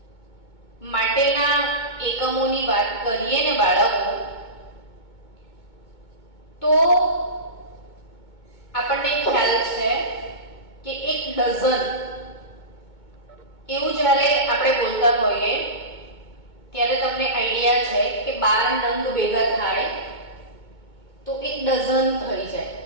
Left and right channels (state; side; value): late; right; 2.2 ms